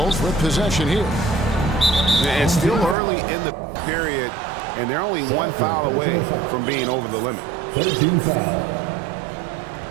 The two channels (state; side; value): drops out; left; at 3.0 s